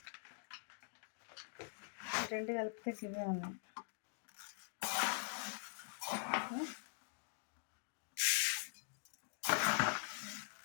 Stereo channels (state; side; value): silent; right; digital silence